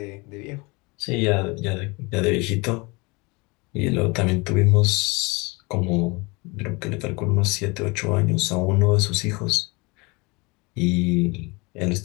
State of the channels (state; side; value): quieter; right; 26.7 dB